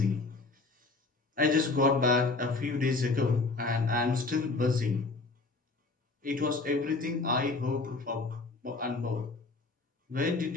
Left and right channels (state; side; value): quieter; right; 3.6 dB